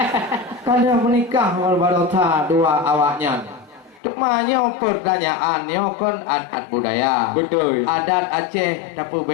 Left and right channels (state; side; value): drops out; right; at 4.0 s